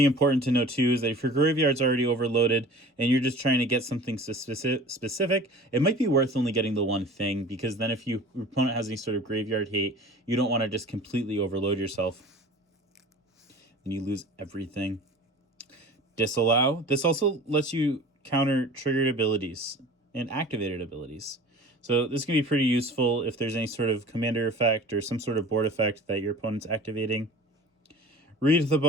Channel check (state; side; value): normal; both; correlation 0.41